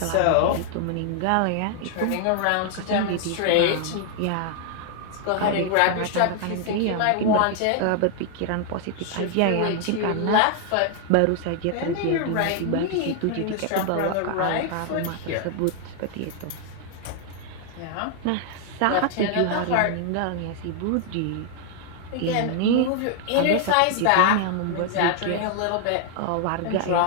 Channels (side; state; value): both; different; correlation 0.00